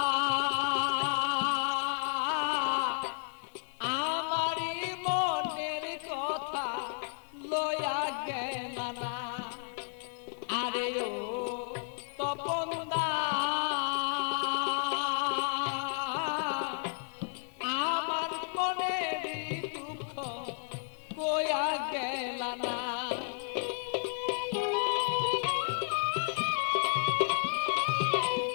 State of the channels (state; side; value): silent; right; 56 dB below the other